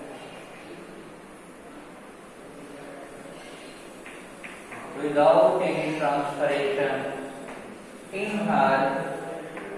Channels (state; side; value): identical; both; correlation 1.00